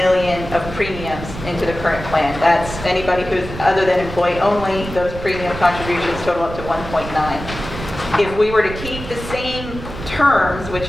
of premiums into the current plan. That's anybody who's other than employee only, those premium contributions total up to 1.9. If we were to keep the same terms,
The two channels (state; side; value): noise; right; rumble, 10 dB below the sound